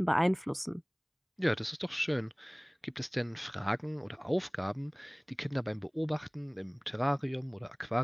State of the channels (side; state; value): both; identical; correlation 1.00